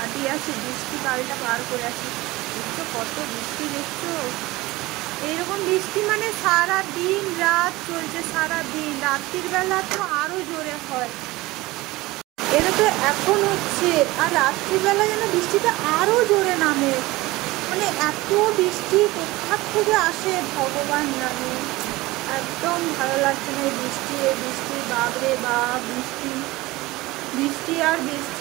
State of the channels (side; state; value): left; quieter; 20.1 dB